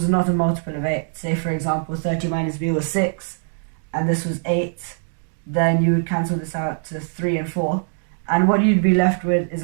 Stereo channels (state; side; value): silent; left; 64 dB below the other